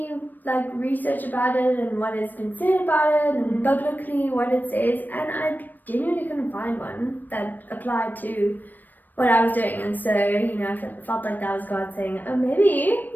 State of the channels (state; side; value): late; right; 0.089 ms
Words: research about it and what has been said about it and biblically what it says, and I genuinely couldn't find one that applied to what I was doing. And so, I felt like that was God saying, oh, maybe